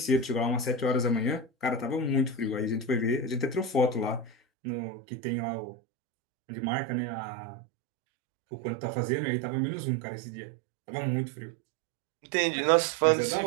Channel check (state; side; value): drops out; left; at 4.4 s